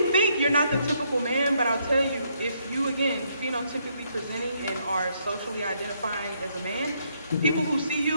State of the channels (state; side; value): inverted; both; correlation -0.73